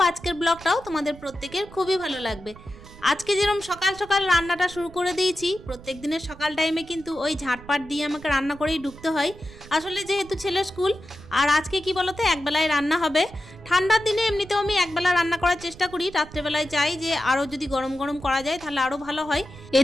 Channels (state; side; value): noise; right; rumble, 18 dB below the sound